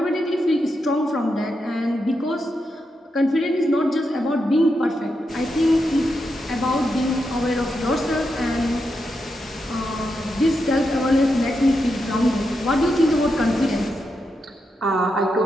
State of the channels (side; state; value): both; normal; correlation 0.85